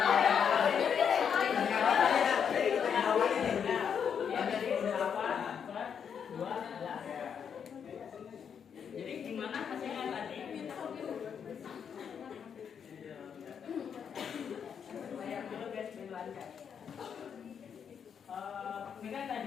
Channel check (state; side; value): quieter; right; 7.4 dB